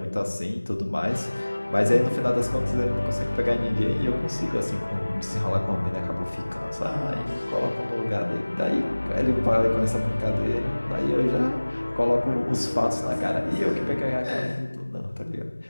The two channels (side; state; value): both; inverted; correlation -1.00